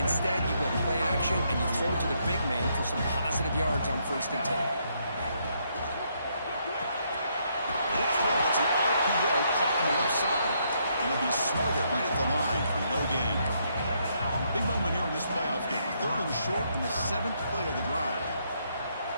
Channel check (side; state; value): both; inverted; correlation -0.74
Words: you go play action, and you throw to the big man for some positive yards on 1st and 10. That's an RPO caught on the left side. And it'll be smothered right at the line for no gain. Big moment here in this playoff game. 3rd and short in the 7th play of the drive.